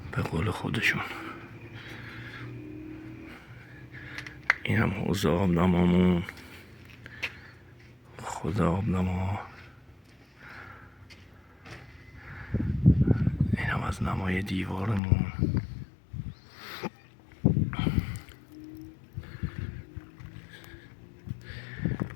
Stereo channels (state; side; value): drops out; right; at 15.0 s